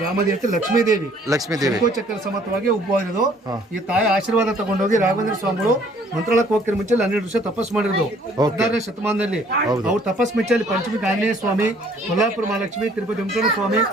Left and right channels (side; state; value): both; normal; correlation 0.59